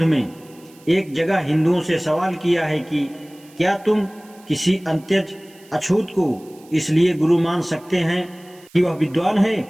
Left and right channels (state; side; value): noise; right; hiss, 27 dB below the sound